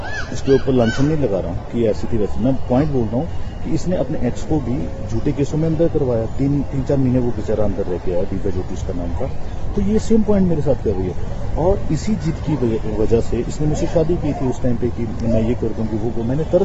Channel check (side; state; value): both; identical; correlation 1.00